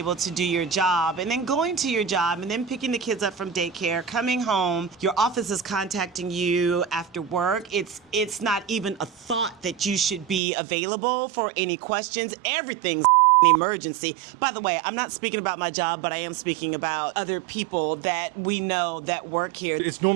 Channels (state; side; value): drops out; left; at 10.4 s